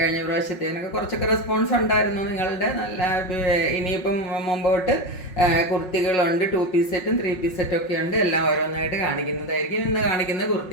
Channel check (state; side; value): late; right; 5.5 ms